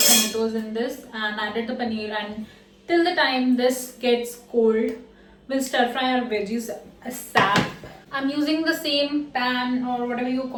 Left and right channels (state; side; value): identical; both; correlation 1.00